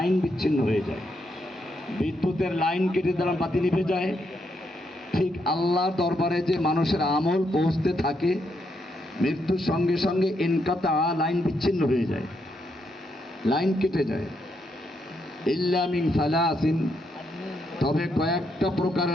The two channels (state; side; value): normal; both; correlation 0.78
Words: বিচ্ছিন্ন হয়ে যায়। বিদ্যুতের লাইন কেটে দিলাম, বাতি নিভে যায়। ঠিক আল্লাহর দরবারে যে মানুষের আমল পৌঁছতে থাকে, মৃত্যুর সঙ্গে সঙ্গে ইনকাতা, লাইন বিচ্ছিন্ন হয়ে যায়, লাইন কেটে যায়। ইল্লা মিন সালাসিন, তবে কয়েকটা